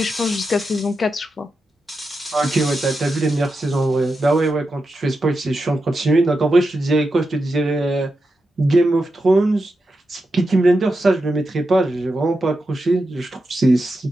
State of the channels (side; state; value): both; normal; correlation 0.89